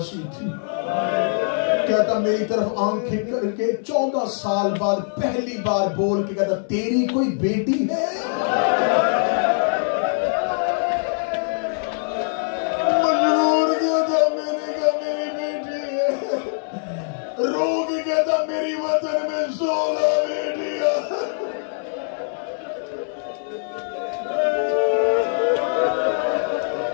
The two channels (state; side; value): silent; right; 64 dB below the other